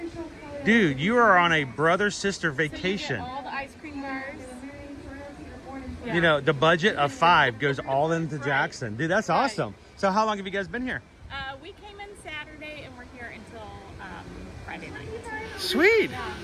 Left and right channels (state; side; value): identical; both; correlation 1.00